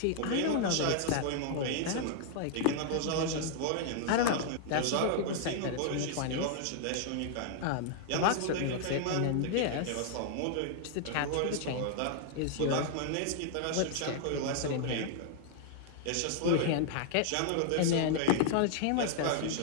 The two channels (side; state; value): both; different; correlation 0.00